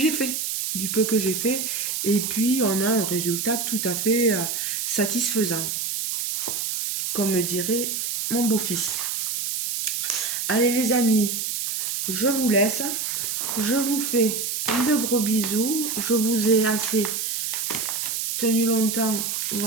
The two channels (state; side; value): noise; right; hiss, 2 dB below the sound